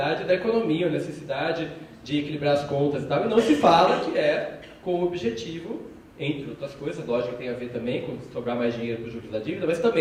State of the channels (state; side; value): identical; both; correlation 1.00